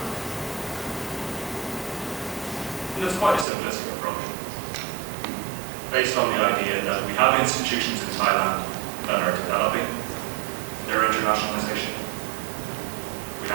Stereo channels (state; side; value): drops out; left; at 3.5 s